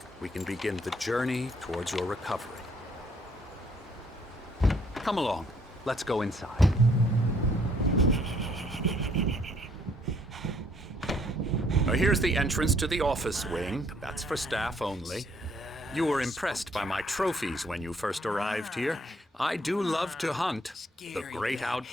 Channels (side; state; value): both; normal; correlation 0.65